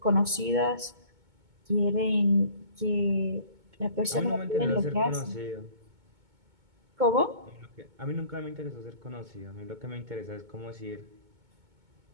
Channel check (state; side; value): late; left; 2.2 ms